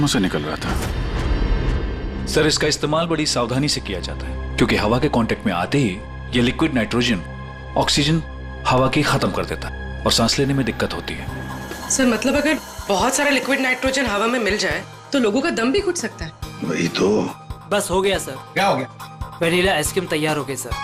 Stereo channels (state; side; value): identical; both; correlation 1.00